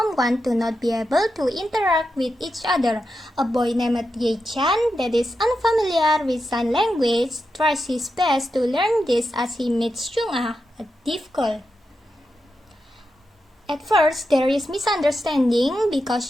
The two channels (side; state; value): both; normal; correlation 0.88